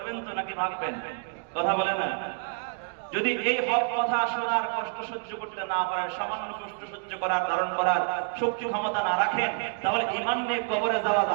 তো নাকি ভাগবেন? কথা বলে না। যদি এই হক কথা শোনার কষ্ট সহ্য করতে না পারেন, সামান্য কষ্ট সহ্য করার, ধারণ করার শক্তি ক্ষমতা না রাখেন, তাহলে ঈমান নিয়ে কবরে যাওয়া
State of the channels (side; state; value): left; quieter; 39.1 dB